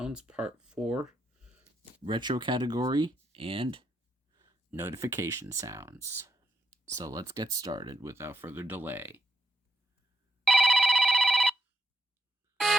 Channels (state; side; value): normal; both; correlation 0.79